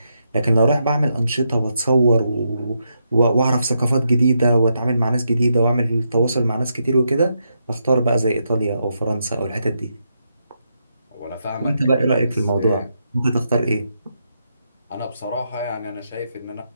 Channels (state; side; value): inverted; both; correlation -0.81